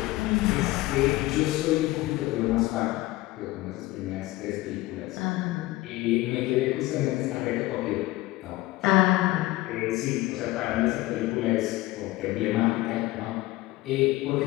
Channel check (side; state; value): right; quieter; 18.7 dB